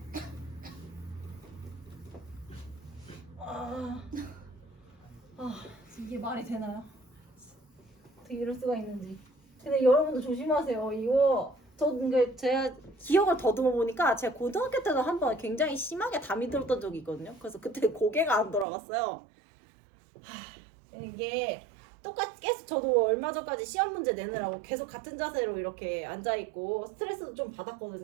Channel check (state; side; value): drops out; left; at 18.7 s